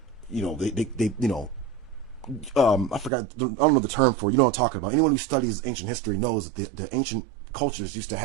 I forgot, I don't know the term for it. You know what I'm talking about. Anyone who studies ancient history knows that the ancient cultures used to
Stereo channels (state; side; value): drops out; left; at 3.1 s